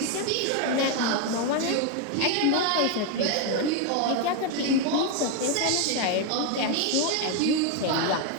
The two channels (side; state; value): both; different; correlation 0.02